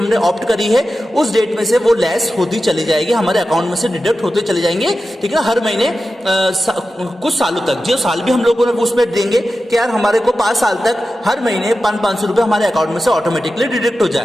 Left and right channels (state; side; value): normal; both; correlation 0.92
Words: ऑप्ट करी है, उस डेट में से वो लेस होती चली जाएगी, हमारे अकाउंट में से डिडक्ट होते चले जाएंगे, ठीक है ना। हर महीने कुछ सालों तक, जो साल भी हम लोगों ने उसमें देंगे कि यार हमारे को 5 साल तक हर महीने 500 रुपए हमारे अकाउंट में से ऑटोमेटिकली डिडक्ट हो